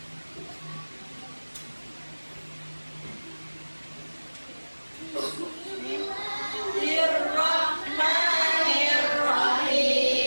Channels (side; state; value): both; inverted; correlation -1.00